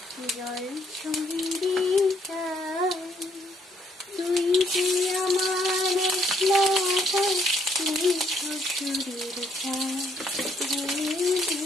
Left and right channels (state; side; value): normal; both; correlation 0.69